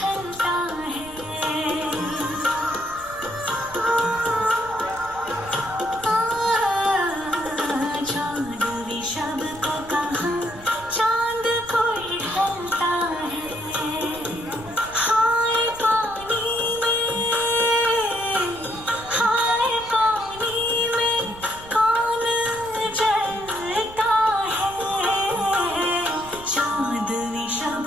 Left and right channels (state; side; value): noise; right; rumble, 18 dB below the sound